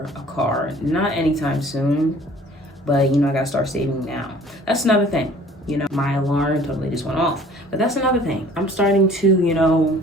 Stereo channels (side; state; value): both; normal; correlation 0.51